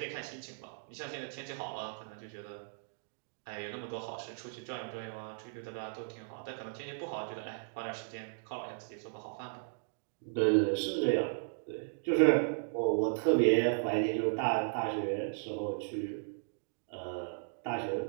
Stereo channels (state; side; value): silent; left; digital silence